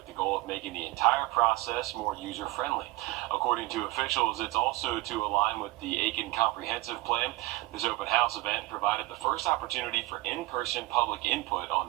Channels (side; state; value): left; quieter; 20.1 dB